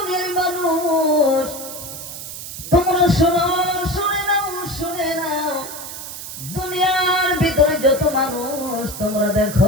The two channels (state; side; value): noise; right; hiss, 10 dB below the sound